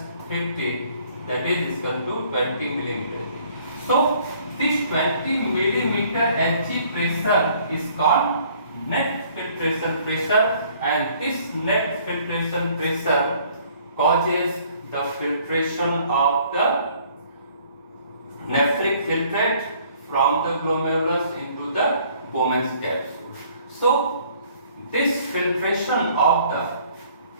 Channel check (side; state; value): both; inverted; correlation -0.59